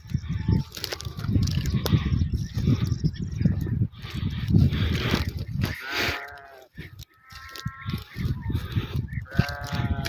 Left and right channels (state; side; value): identical; both; correlation 1.00